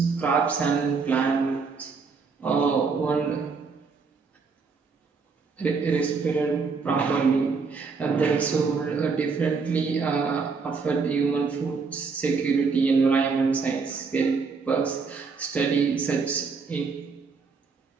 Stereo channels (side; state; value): left; quieter; 4.9 dB